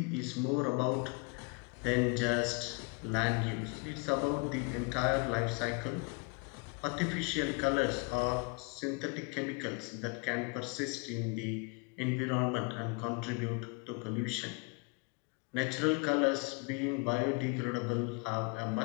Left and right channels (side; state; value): right; quieter; 31.2 dB